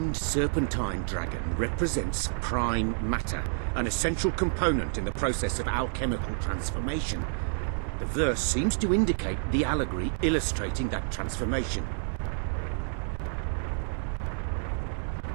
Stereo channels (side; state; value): left; silent; digital silence